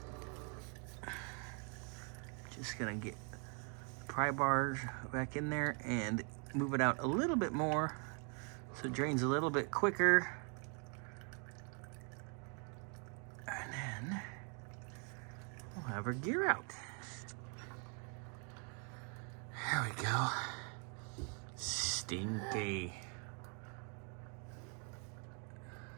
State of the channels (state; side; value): quieter; left; 38.6 dB